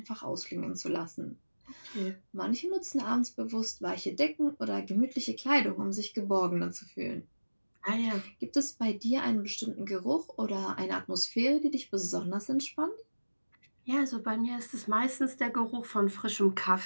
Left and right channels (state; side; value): inverted; both; correlation -1.00